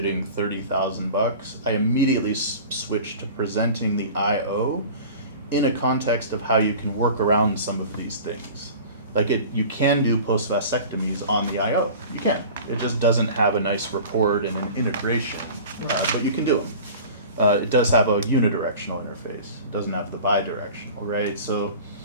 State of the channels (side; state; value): both; inverted; correlation -0.39